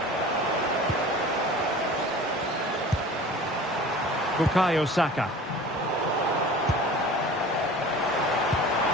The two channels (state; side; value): normal; both; correlation 0.41